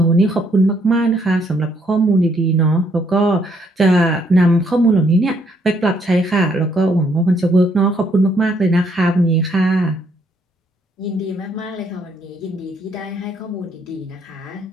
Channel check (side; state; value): both; normal; correlation 0.70